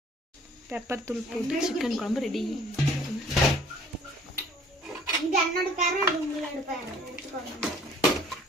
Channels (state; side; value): normal; both; correlation 0.55